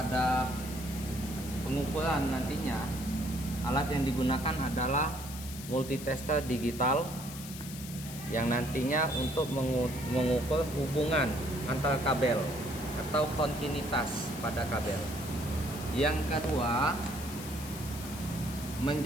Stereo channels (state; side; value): noise; left; hiss, 12 dB below the sound